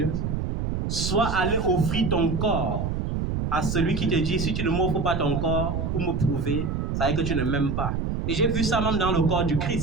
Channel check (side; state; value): right; noise; rumble, 1 dB below the sound